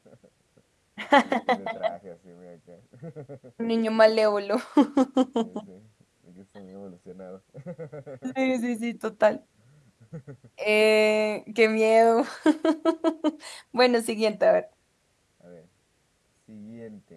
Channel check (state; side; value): identical; both; correlation 1.00